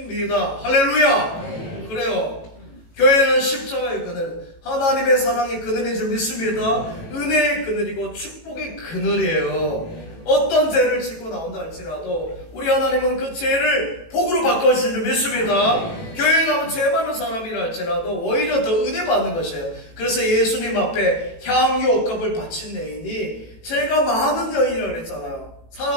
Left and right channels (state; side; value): late; right; 18 ms